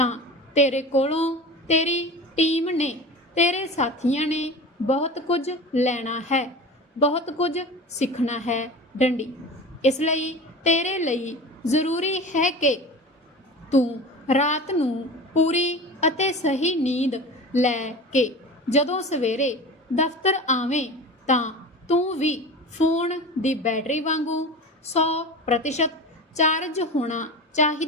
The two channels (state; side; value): normal; both; correlation 0.32